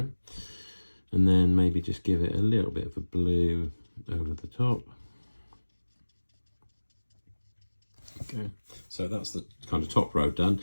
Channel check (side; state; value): both; inverted; correlation -1.00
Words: And then maybe just give it a little bit of a blue over the top. Okay, so that's the kind of top row done.